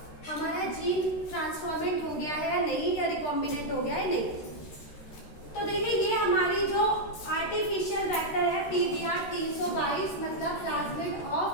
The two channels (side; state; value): right; late; 13 ms